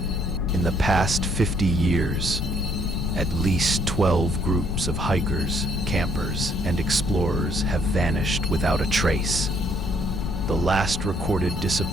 In the past 50 years, at least 12 groups of hikers, campers, and explorers have vanished without a trace. The last recorded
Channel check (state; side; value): noise; left; rumble, 4 dB below the sound